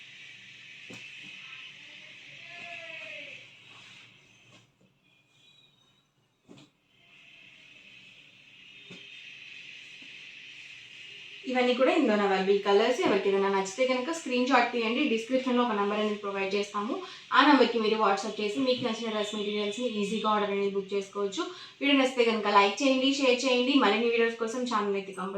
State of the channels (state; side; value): identical; both; correlation 1.00